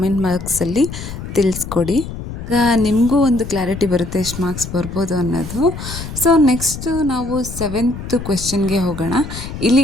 ಬಾಕ್ಸಲ್ಲಿ ತಿಳಿಸ್ಕೊಡಿ. ಈಗ ನಿಮಗೂ ಒಂದು ಕ್ಲಾರಿಟಿ ಬರುತ್ತೆ ಎಷ್ಟು ಮಾರ್ಕ್ಸ್ ಬರ್ಬೋದು ಅನ್ನೋದು. ಸೊ ನೆಕ್ಸ್ಟು ನಾವು 7th ಕ್ವೆಶ್ಚನ್ಗೆ ಹೋಗೋಣ.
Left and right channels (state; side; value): noise; left; rumble, 9 dB below the sound